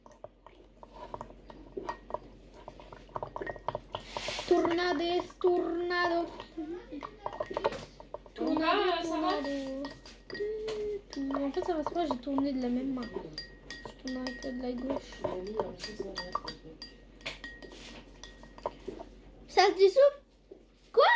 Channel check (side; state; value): both; identical; correlation 1.00